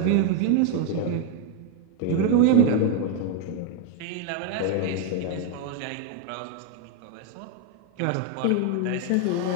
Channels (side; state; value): both; different; correlation 0.01